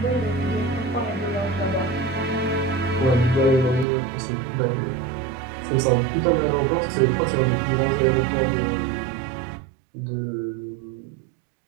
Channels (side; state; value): left; drops out; at 3.9 s